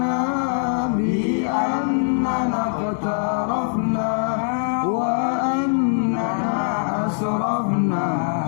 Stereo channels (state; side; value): silent; right; digital silence